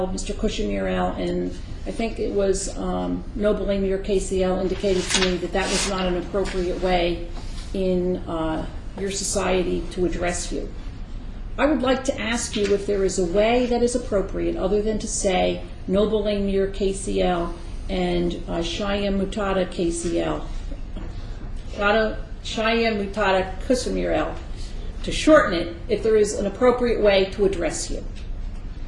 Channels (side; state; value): both; identical; correlation 1.00